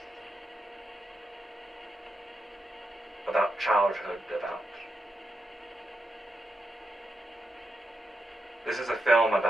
about childhood, this is a film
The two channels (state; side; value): normal; both; correlation 0.86